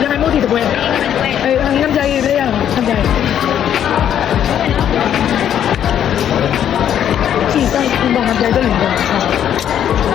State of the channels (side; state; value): right; quieter; 9.9 dB